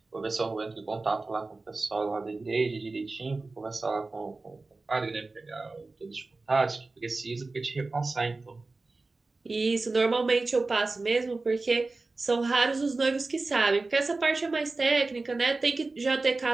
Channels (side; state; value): left; quieter; 3.5 dB